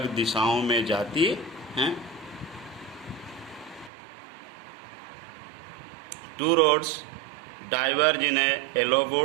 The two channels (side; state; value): left; drops out; at 3.9 s